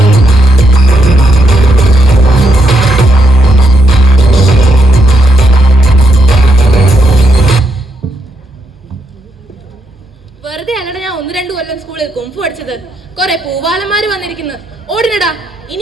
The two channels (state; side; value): normal; both; correlation 0.79